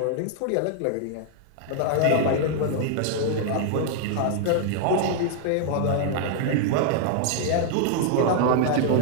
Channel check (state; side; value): different; both; correlation 0.00